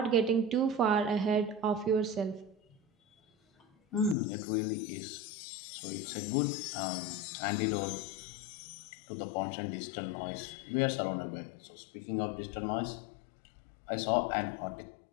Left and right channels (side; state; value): right; drops out; at 4.2 s